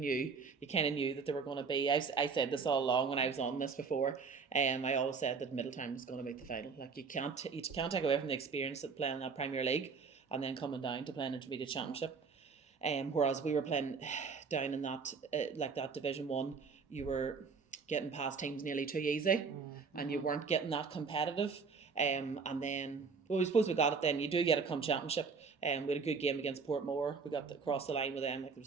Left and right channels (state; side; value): quieter; left; 5.2 dB